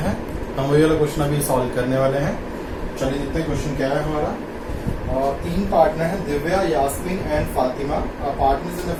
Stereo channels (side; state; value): both; identical; correlation 1.00